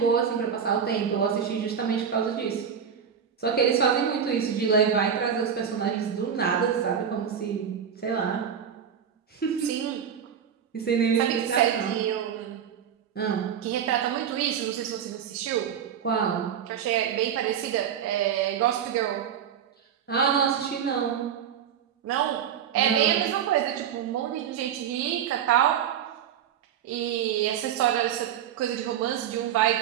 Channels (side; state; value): left; quieter; 8.3 dB